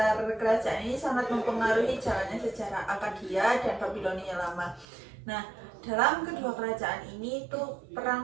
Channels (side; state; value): left; drops out; at 4.9 s